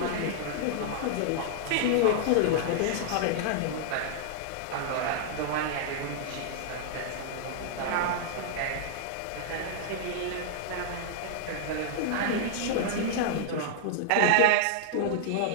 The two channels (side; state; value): both; different; correlation -0.01